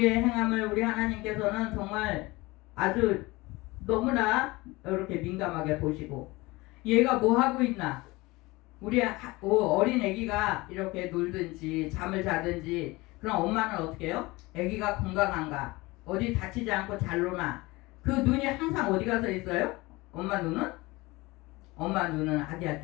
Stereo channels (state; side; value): quieter; right; 22.0 dB